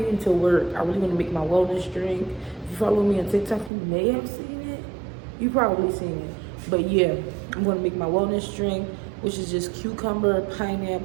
into work, I really want to make my wellness drink. If you follow me on TikTok, you may have seen it. You probably seen it. But yeah, I'm going to make my wellness drink, which is just cucumber,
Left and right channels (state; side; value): drops out; left; at 3.7 s